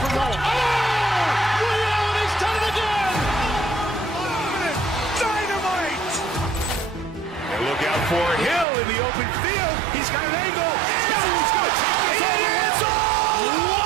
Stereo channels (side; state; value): left; drops out; at 8.7 s